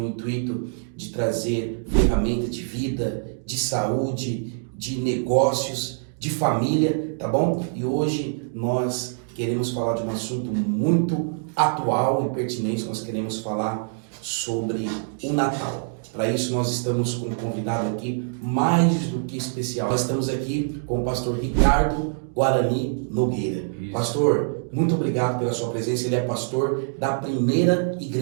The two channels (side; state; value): left; silent; digital silence